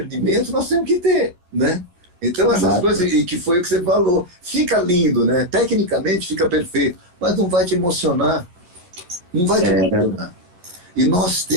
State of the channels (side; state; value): left; late; 11 ms